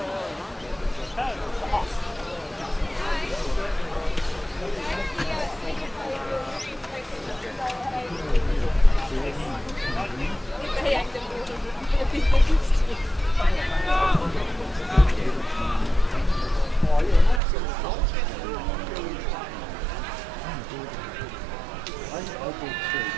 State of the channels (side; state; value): left; drops out; at 17.4 s